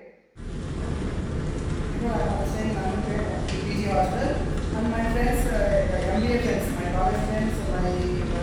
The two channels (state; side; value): identical; both; correlation 1.00